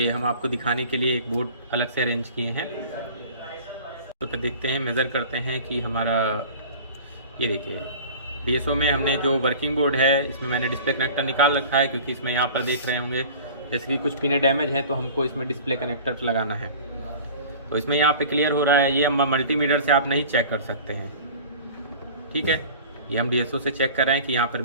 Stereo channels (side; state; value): both; inverted; correlation -0.41